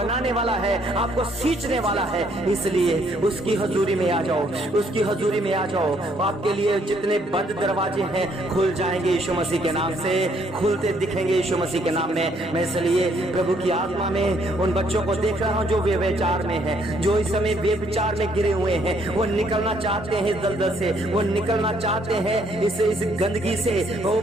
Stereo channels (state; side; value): normal; both; correlation 0.68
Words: वाला है, आपको सींचने वाला है। इसलिए उसकी हजूरी में आ जाओ, उसकी हजूरी में आ जाओ। आपके लिए जितने बंद दरवाजे हैं खुल जाएंगे यीशु मसीह के नाम से, खुलते दिखेंगे यीशु मसीह के नाम में। मैं इसलिए प्रभु की आत्मा में उन बच्चों को देख रहा हूं जो व्यभिचार में हैं, जो इस समय व्यभिचार में गिरे हुए हैं, वो निकलना चाहते हैं दलदल से, वो निकलना चाहते हैं इस गंदगी से। ओ